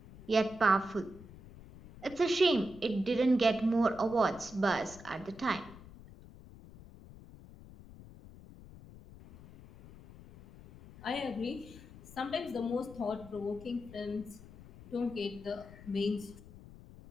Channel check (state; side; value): noise; left; rumble, 18 dB below the sound